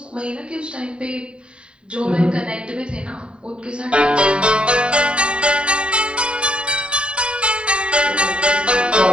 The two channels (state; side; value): late; left; 0.052 ms